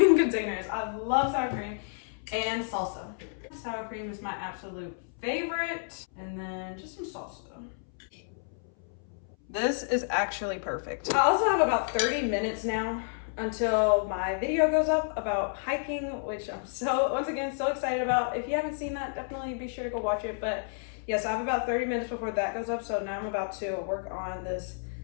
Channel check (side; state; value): right; silent; 58 dB below the other